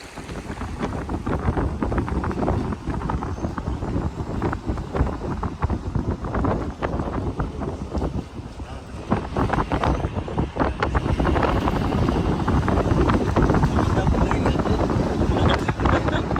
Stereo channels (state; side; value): identical; both; correlation 1.00